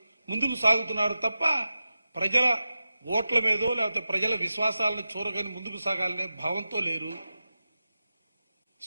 ముందుకు సాగుతున్నారు తప్ప ప్రజల ఓట్ల మీదో లేకపోతే ప్రజల విశ్వాసాలను చూరగని ముందుకు సాగాలనే భావంతో లేరు.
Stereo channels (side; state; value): both; inverted; correlation -0.93